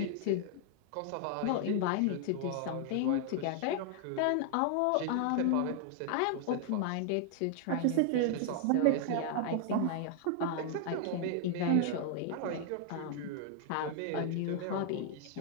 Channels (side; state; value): both; different; correlation 0.00